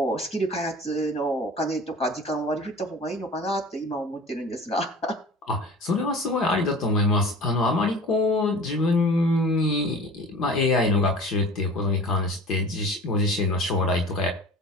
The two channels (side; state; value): both; normal; correlation 0.40